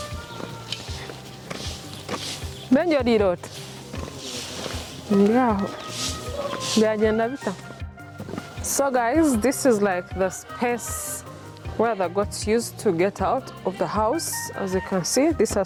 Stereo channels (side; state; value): both; identical; correlation 1.00